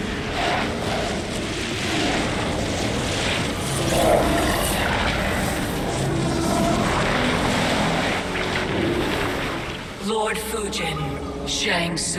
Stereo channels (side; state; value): both; identical; correlation 1.00